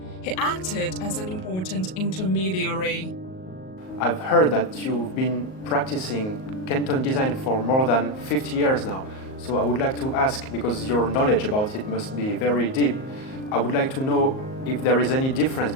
He acted as an important intermediary. I've heard that you've been practicing Canton design for more than 50 years now. So I would like to ask, because your knowledge about it must be very deep, I would like to know if there is any difference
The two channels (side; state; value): right; late; 38 ms